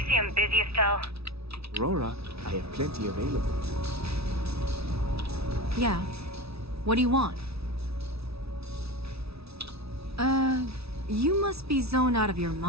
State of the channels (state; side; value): late; left; 0.78 ms